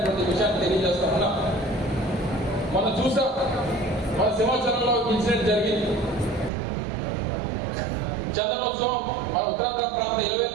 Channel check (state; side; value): drops out; left; at 6.5 s